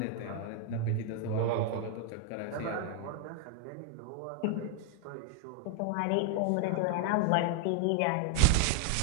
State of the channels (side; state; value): both; different; correlation 0.01